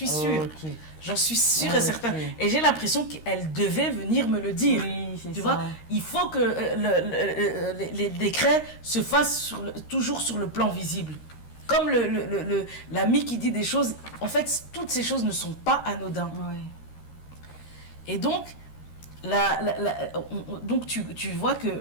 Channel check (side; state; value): right; late; 13 ms